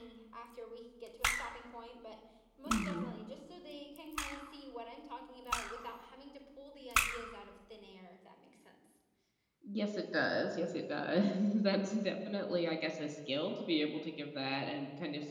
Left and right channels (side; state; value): both; identical; correlation 1.00